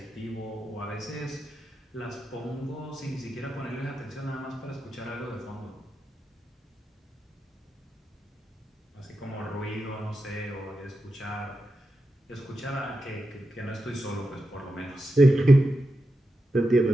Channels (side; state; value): both; normal; correlation 0.88